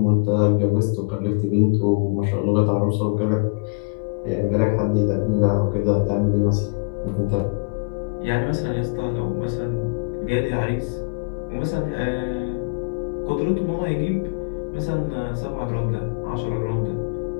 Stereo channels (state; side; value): quieter; right; 34.3 dB